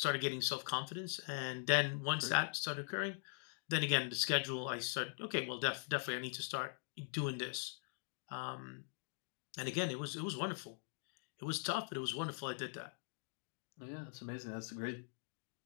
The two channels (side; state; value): right; silent; digital silence